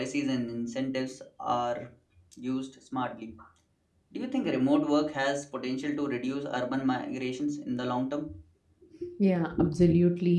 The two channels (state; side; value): identical; both; correlation 1.00